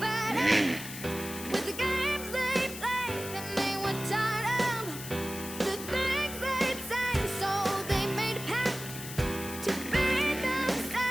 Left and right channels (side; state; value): left; noise; hiss, 10 dB below the sound